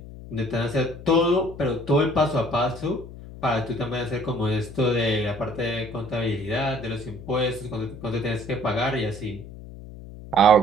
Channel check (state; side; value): noise; left; hum, 14 dB below the sound